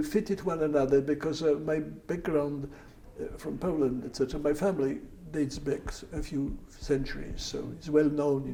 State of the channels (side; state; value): both; identical; correlation 1.00